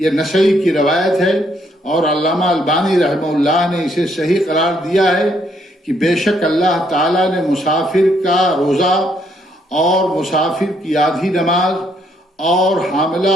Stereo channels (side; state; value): both; normal; correlation 0.71